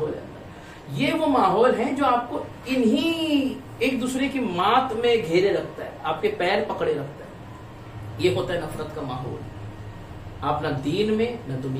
ہے. یہ وہ ماحول ہے جو آپ کو انہی ایک دوسرے کی مات میں گھیرے رکھتا ہے، آپ کے پیر پکڑے رکھتا ہے. یہ ہوتا ہے نفرت کا ماحول. آپ نہ دین میں نہ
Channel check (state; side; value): identical; both; correlation 1.00